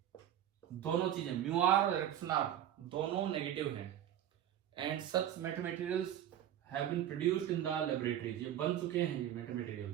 दोनों चीजें म्यू आर और इलेक्ट्रॉन आर दोनों नेगेटिव हैं, and such meta materials have been produced in the laboratories, ये बन चुके हैं, ये मेटा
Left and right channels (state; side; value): quieter; left; 11.1 dB